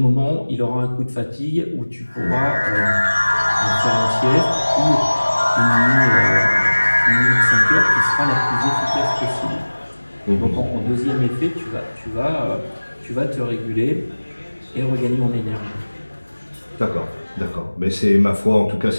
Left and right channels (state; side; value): inverted; both; correlation -1.00